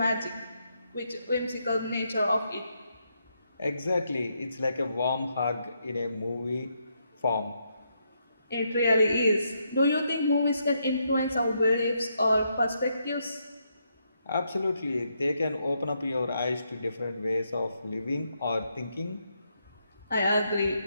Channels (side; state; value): both; inverted; correlation -0.78